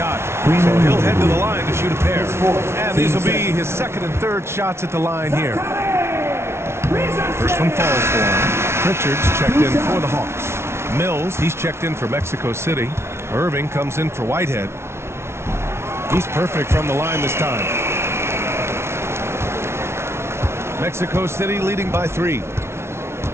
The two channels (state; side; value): late; left; 0.12 ms